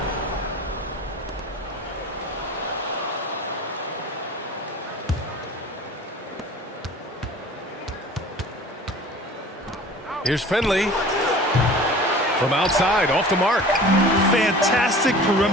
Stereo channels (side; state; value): both; normal; correlation 0.42